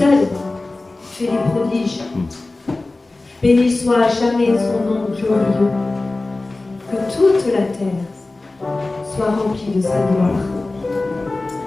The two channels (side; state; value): right; quieter; 3.1 dB